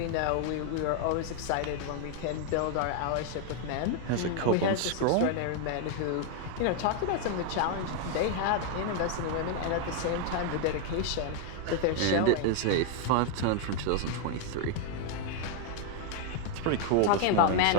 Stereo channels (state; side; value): different; both; correlation 0.00